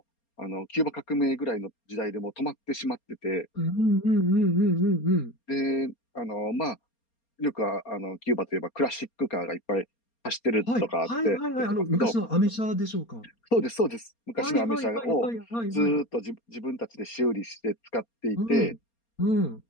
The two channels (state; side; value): late; right; 4.3 ms